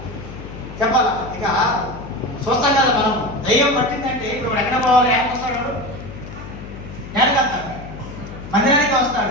చెప్పాలా? ఇక చూస్తాం కదా మనం, దయ్యం పట్టిందంటే ఇప్పుడు ఎక్కడ పోవాలి? వస్తాడు, నేలకెళ్తాడు, మందిరానికి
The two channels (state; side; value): noise; left; hum, 13 dB below the sound